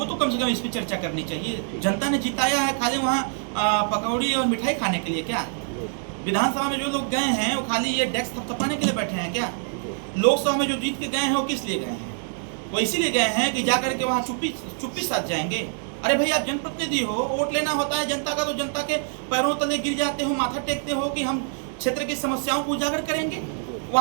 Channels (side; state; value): left; silent; 62 dB below the other